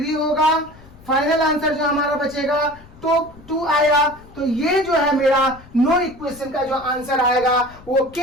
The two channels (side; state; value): left; noise; rumble, 22 dB below the sound